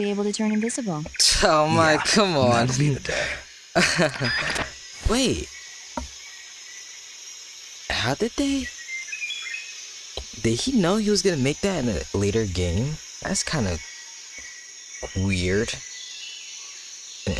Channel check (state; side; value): identical; both; correlation 1.00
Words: able to turn invisible. Oh my, Yeah, come on. That'll be the day. Wait. How did they? Did he know he was gonna make that in a later game? That's kind of weird. In